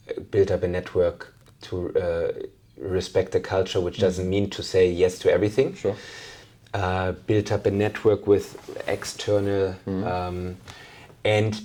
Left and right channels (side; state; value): both; identical; correlation 1.00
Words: build up a network, to respect the culture, which doesn't mean to say yes to everything. Sure. Build up a network with external,